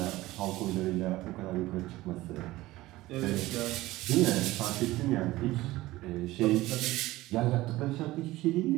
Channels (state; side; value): quieter; left; 17.9 dB